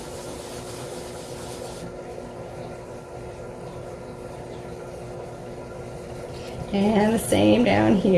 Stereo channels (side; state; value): both; identical; correlation 1.00